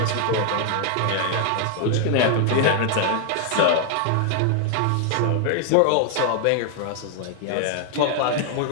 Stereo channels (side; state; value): both; different; correlation 0.00